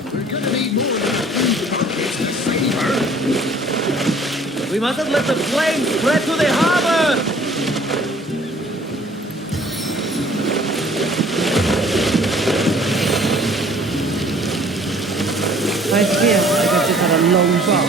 We mustn't let the flames spread to the harbor! I fear like I've just had a long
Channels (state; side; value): normal; both; correlation 0.54